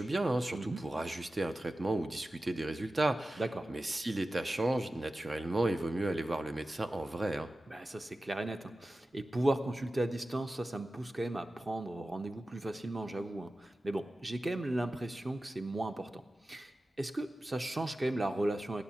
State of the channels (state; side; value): normal; both; correlation 0.95